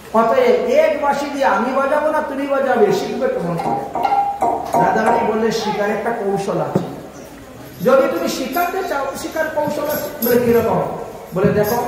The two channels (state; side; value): identical; both; correlation 1.00